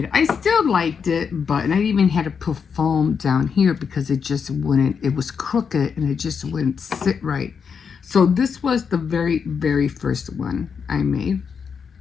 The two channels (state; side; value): quieter; right; 6.3 dB